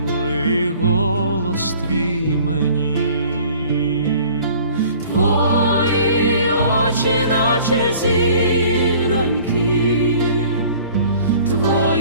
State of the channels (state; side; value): inverted; both; correlation -0.51